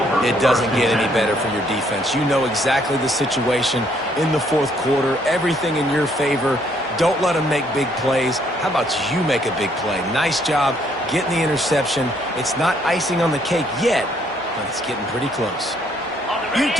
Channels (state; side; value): normal; both; correlation 0.68